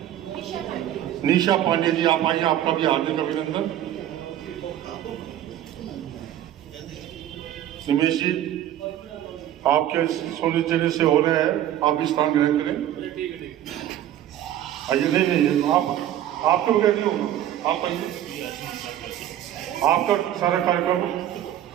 निशा पांडे जी आप आइए, आपका भी हार्दिक अभिनंदन। निमेश जी, आपके सुनिश्चित से हो रहे हैं, आप भी स्थान ग्रहण करें। आइए, नहीं आपके बगैर नहीं होगा, आप आइए, आपका सारा कार्यक्रम।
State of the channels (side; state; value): left; quieter; 11.8 dB